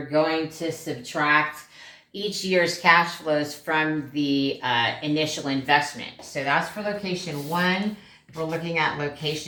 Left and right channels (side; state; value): both; identical; correlation 1.00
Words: going to subtract each year's cash flows from the initial investment. So that's for location 1. We're looking at